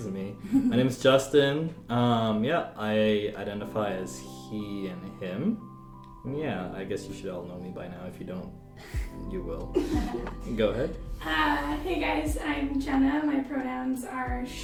me. My name is Justin. I identify as he and him. Yeah, I guess you should all know me by now. If you don't, you will. Go ahead. Hey guys, I'm Jenna. My pronouns are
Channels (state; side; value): identical; both; correlation 1.00